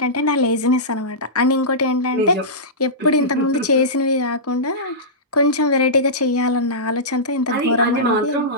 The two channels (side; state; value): both; normal; correlation -0.16